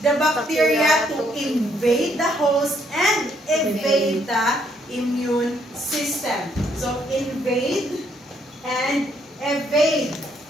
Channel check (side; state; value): both; normal; correlation 0.70